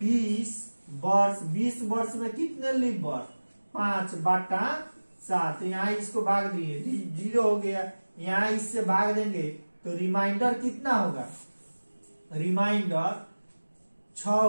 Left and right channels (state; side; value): inverted; both; correlation -1.00